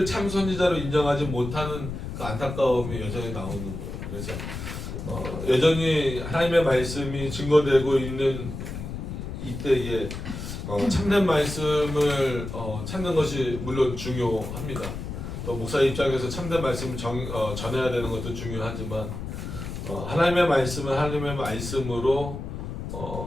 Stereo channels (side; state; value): left; noise; rumble, 7 dB below the sound